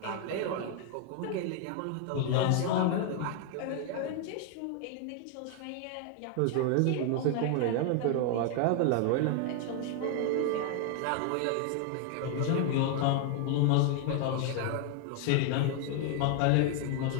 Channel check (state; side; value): different; both; correlation 0.00